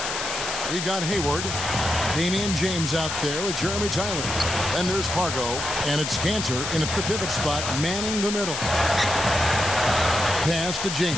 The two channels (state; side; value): noise; left; hiss, 4 dB below the sound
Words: we've got Hayward, Damian James out there with Jeremy Tyler. Then there's Pargo, and it's Kanter in at the pivot spot, manning the middle. Pass to